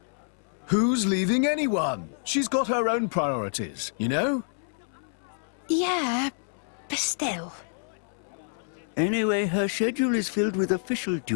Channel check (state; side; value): silent; right; 60 dB below the other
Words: Who's leaving anyone? She's got her own priorities, you know? Yeah, but still. Anyway, her schedule is filled with official